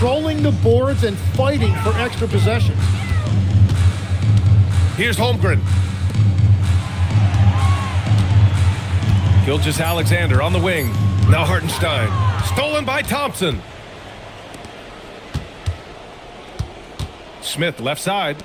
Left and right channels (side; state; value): both; identical; correlation 1.00